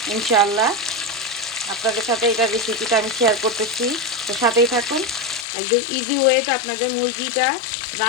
ইনশাআল্লাহ। আপনাদের সাথে এটা রেসিপিটা আমি শেয়ার করতেছি, তো সাথেই থাকুন। একদম ইজি ওয়েতে আপনাদের মুরগিটা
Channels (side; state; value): right; drops out; at 5.5 s